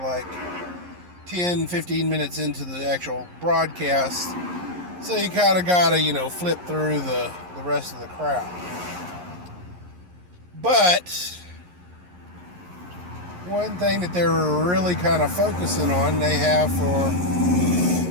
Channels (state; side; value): late; left; 11 ms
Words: 10, 15 minutes into the actual broadcast. So you kind of got to, flip through the rest of the crowd. But one thing that they're really kind of focusing on, they have